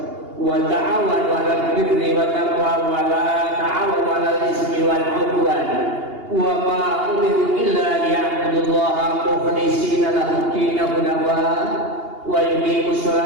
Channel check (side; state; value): left; late; 2.8 ms